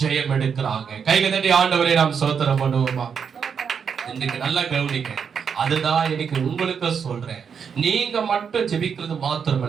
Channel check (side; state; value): left; quieter; 6.8 dB